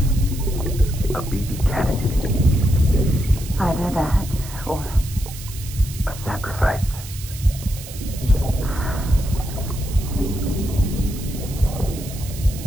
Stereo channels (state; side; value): noise; right; hiss, 14 dB below the sound